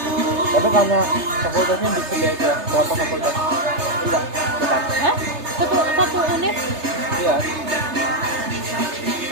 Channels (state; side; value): late; left; 3.3 ms